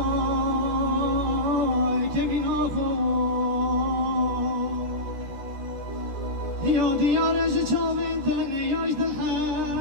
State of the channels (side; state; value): left; late; 14 ms